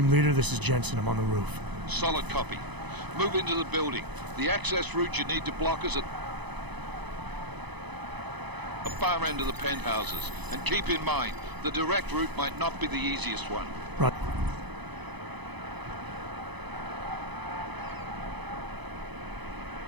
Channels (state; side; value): late; left; 0.99 ms